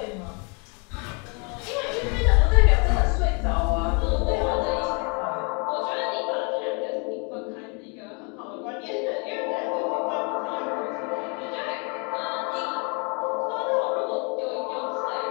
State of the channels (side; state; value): right; quieter; 34.3 dB